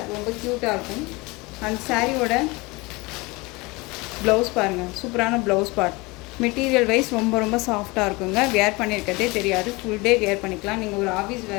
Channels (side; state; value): right; quieter; 24.5 dB